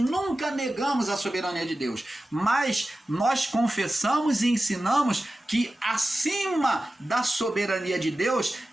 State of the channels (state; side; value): normal; both; correlation 0.94